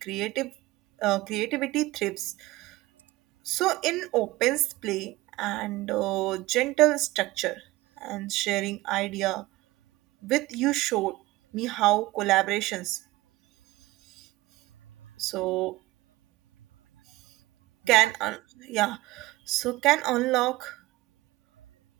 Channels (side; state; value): left; quieter; 19.2 dB